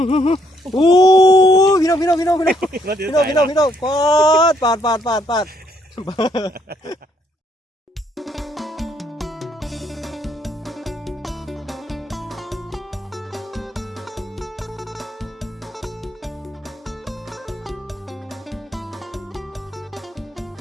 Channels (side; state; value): both; normal; correlation 0.70